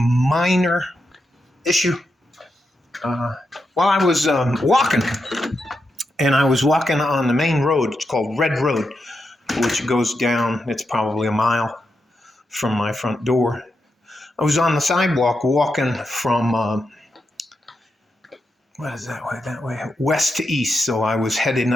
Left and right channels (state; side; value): normal; both; correlation 0.86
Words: issue. While I was walking, and I was walking on the main road, it's called Red Road, which goes down, it's probably a mile from my front door. I was on the sidewalk walking from, what is that way? That way, west to east. So I was heading